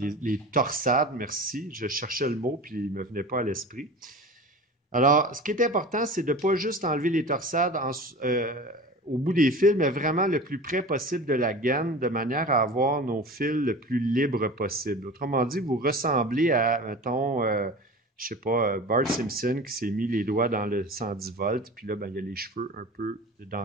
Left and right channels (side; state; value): both; normal; correlation 0.35